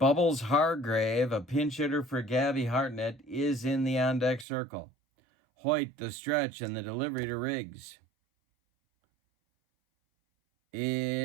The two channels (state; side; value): drops out; left; at 4.5 s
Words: Hargrave, a pinch hitter for Gabby Hartnett, is in the on-deck circle. Hoyt, the stretch, and the delivery to Riggs